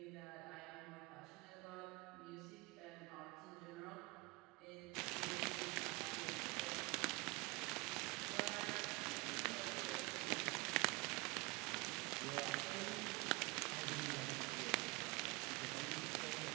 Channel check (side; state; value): left; quieter; 25.7 dB